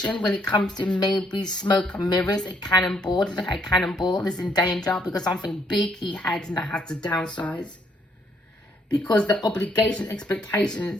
when it comes to maybe smoke and mirrors, a cannonball. A cannonball is in danger because something big he had and that has to downsize. Because the obligation,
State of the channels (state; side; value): normal; both; correlation 0.70